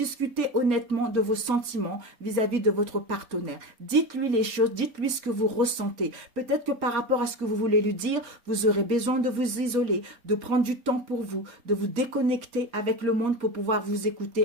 honnêtement de vos sentiments vis-à-vis de votre partenaire. Dites-lui les choses, dites-lui ce que vous ressentez. Peut-être que par rapport à ce que vous voulez lui dire, vous aurez besoin de vous isoler, de prendre du temps pour vous, de vous déconnecter avec le monde pour pouvoir vous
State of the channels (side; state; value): left; late; 4.2 ms